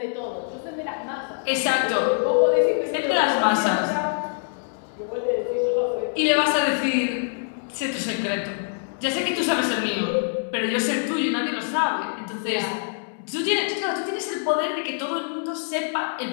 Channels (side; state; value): right; silent; 62 dB below the other